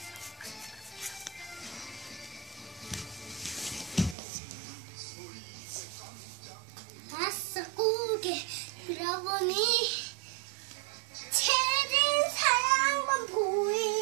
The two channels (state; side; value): drops out; left; at 4.2 s